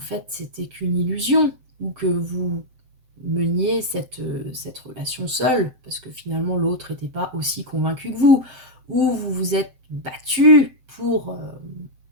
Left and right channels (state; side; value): late; left; 7.8 ms